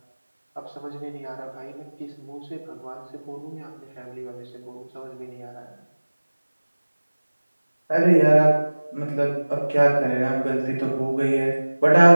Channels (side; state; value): both; inverted; correlation -1.00